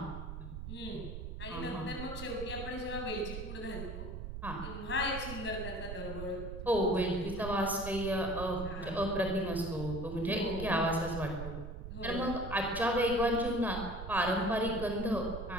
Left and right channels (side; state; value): right; noise; rumble, 7 dB below the sound